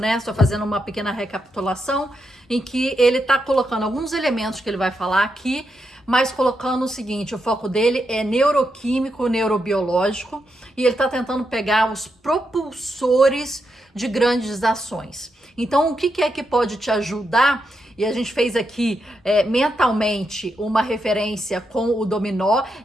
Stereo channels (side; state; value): both; normal; correlation 0.83